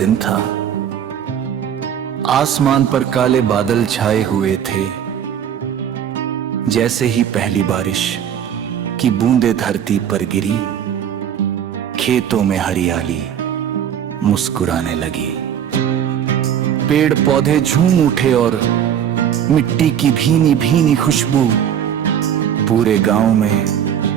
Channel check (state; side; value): quieter; left; 9.2 dB